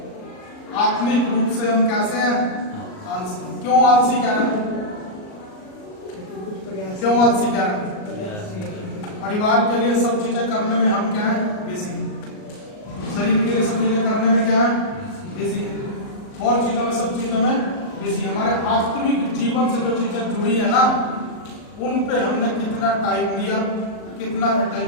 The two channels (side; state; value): right; late; 38 ms